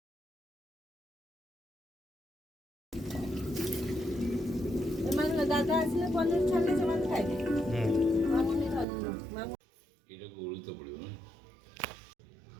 ଏମାନେ ଦାଦା ଆସିଲେ ପନିର ଛାଣିଲେ ସେମାନେ ଖାଇବେ ମାମୁନି ଧରିଲ ମାମୁ ଏଇଟାକୁ ଓଳିତ ପଡ଼ିବ ନା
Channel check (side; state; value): left; drops out; at 8.8 s